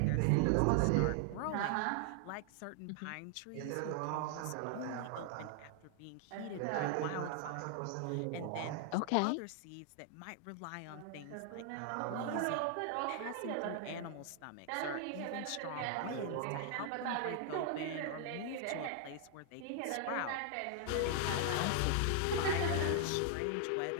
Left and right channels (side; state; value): both; different; correlation 0.00